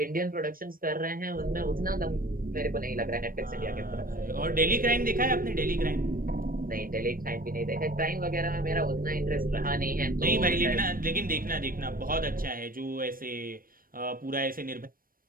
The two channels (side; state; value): left; late; 0.41 ms